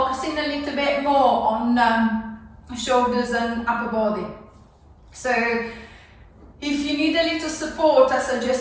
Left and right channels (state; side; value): identical; both; correlation 1.00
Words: a little bit more on shoulders and upper body. So if you need a little support, I